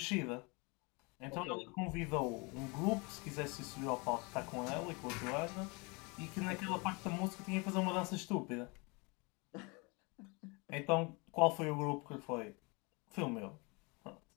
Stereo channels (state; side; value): quieter; right; 29.1 dB